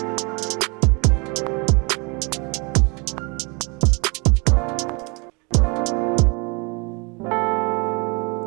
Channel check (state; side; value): quieter; left; 30.7 dB